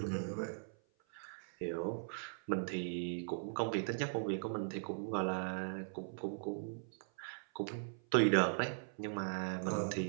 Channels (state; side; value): silent; left; 51 dB below the other